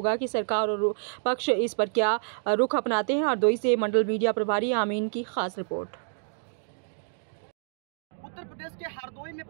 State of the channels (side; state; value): left; silent; digital silence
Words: कि सरकार और पक्ष इस पर क्या रुख अपनाते हैं। हरदोई से मंडल मीडिया प्रभारी आमीन की खास रिपोर्ट। उत्तर प्रदेश के हरदोई में